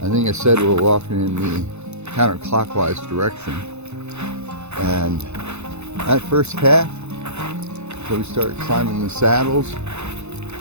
I think I said we're walking in the counterclockwise direction, and that first half, so we start climbing the saddles,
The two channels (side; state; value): left; late; 0.81 ms